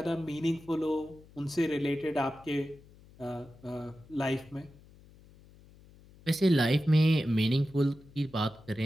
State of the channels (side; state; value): left; noise; hum, 24 dB below the sound